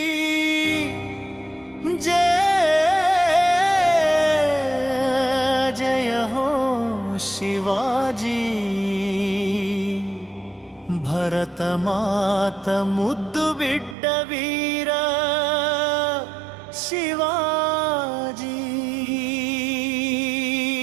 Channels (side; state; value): left; drops out; at 14.0 s